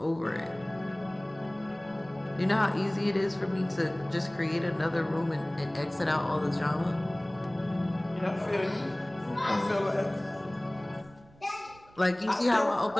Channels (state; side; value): noise; right; rumble, 26 dB below the sound